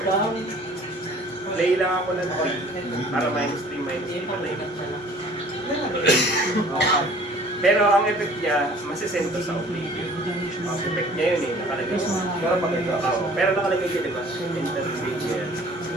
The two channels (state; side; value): normal; both; correlation 0.51